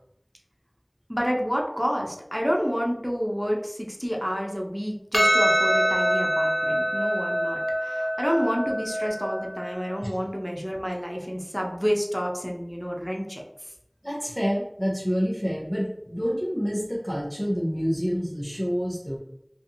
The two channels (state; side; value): identical; both; correlation 1.00